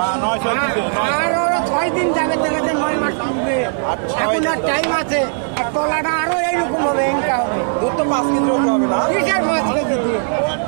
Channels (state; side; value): silent; left; 61 dB below the other